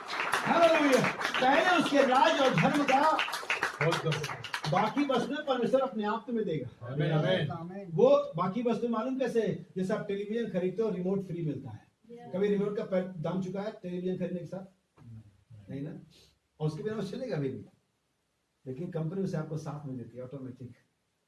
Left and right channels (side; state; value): both; identical; correlation 1.00